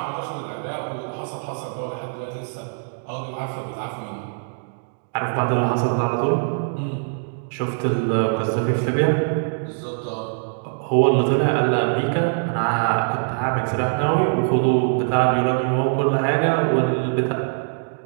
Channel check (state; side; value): silent; left; digital silence